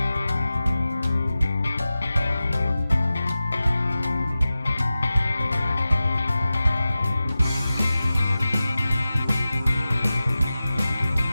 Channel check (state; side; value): inverted; both; correlation -0.95